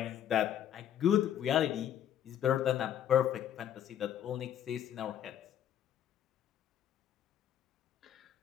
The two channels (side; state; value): right; quieter; 10.4 dB